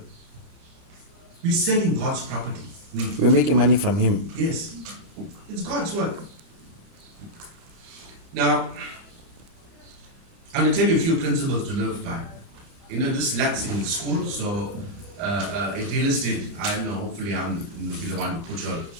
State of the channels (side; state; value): left; late; 30 ms